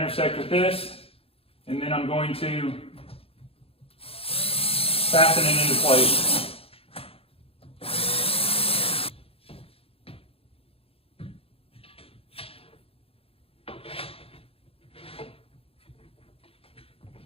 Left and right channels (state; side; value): late; right; 0.27 ms